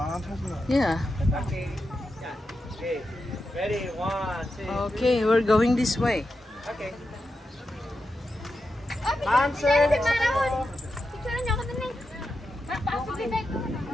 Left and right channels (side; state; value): both; normal; correlation 0.88